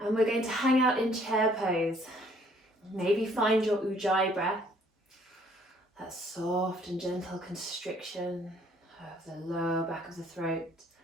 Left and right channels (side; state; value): both; normal; correlation 0.62